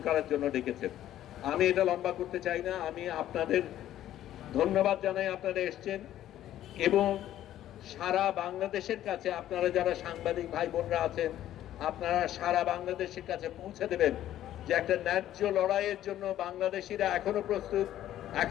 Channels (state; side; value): quieter; right; 12.5 dB